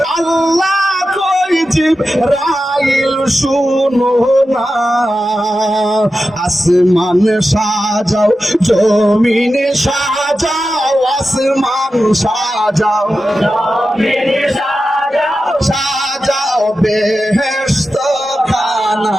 আল্লাহ কই জিবরাইল শুনো না আসমান সাজাও জমিন সাজাও আসমান সাজাও জমিন সাজাও সাজাও বেহেশত খানা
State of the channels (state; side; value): normal; both; correlation 0.92